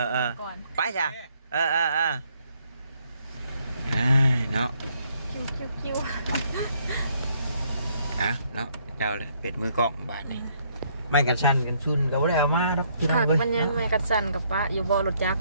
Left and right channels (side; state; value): both; inverted; correlation -0.69